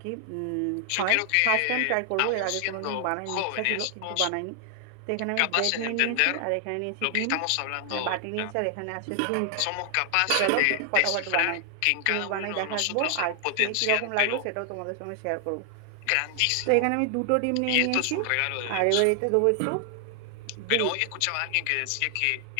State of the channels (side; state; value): both; different; correlation 0.00